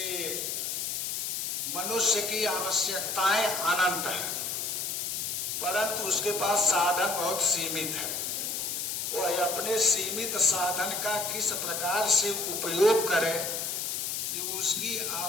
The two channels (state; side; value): noise; left; hiss, 2 dB below the sound